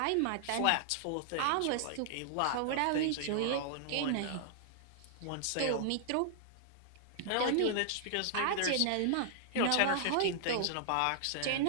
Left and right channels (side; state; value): both; different; correlation -0.01